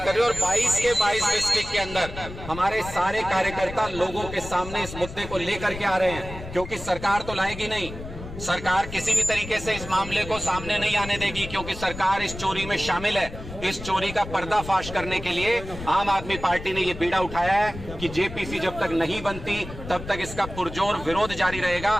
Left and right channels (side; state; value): left; noise; rumble, 11 dB below the sound